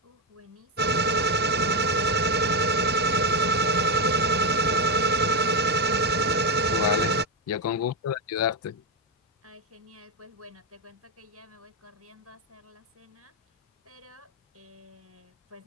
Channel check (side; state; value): both; normal; correlation 0.09